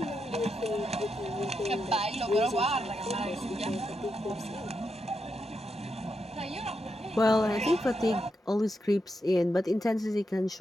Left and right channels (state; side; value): normal; both; correlation 0.84